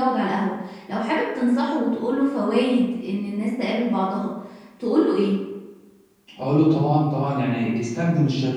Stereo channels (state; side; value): identical; both; correlation 1.00